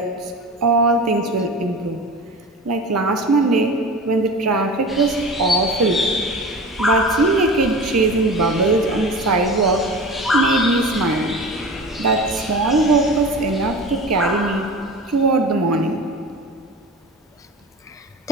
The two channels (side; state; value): both; normal; correlation 0.33